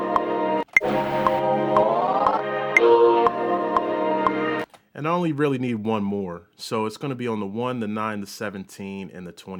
And I only really need one more. So it's going to be on the 1, the 9, the 17, and the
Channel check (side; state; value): both; identical; correlation 1.00